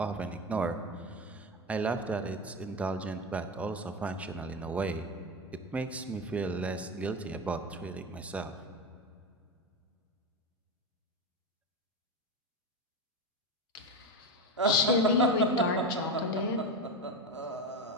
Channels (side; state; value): both; normal; correlation 0.18